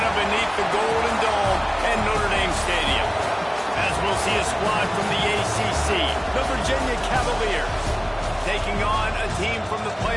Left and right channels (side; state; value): both; identical; correlation 1.00